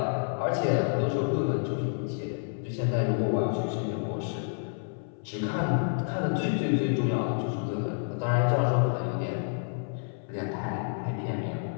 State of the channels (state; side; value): silent; right; 59 dB below the other